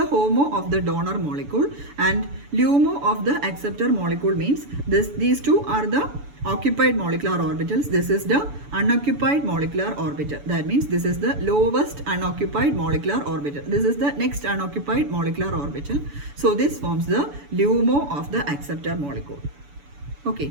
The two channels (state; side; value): late; left; 7.0 ms